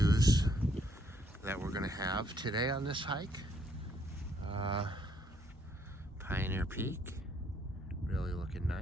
that we're gonna have today on this hike. Pioneer Peak, really looking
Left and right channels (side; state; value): both; normal; correlation 0.69